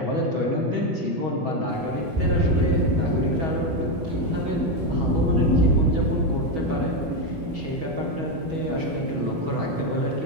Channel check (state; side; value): late; left; 6.2 ms